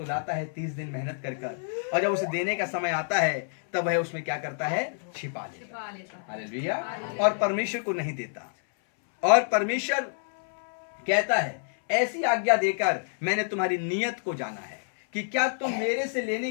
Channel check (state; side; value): silent; right; 59 dB below the other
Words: लाता है 30 दिन मेहनत कर, और जब उसे देने का समय आता है तब वह उसमें क्या करता है? छिपा लेता। हालेलुया। और परमेश्वर को नहीं देता। और परमेश्वर कहता है ऐसी आज्ञा देकर मैंने तुम्हारी नियत को जाना है कि क्या तुम मेरे से लेने